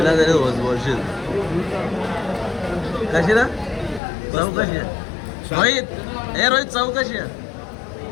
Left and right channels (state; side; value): drops out; right; at 4.0 s